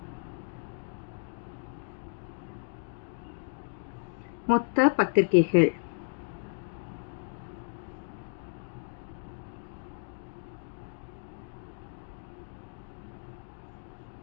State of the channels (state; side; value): silent; right; digital silence